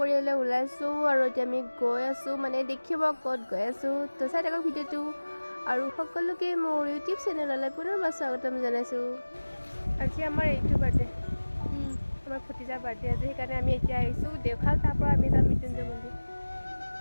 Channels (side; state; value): both; inverted; correlation -1.00